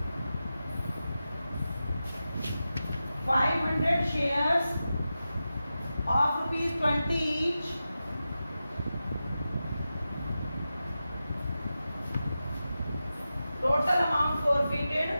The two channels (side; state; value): both; inverted; correlation -0.92